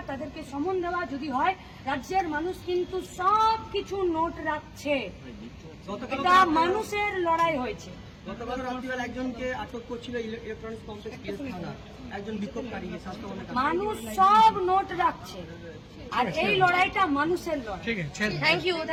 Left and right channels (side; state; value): both; identical; correlation 1.00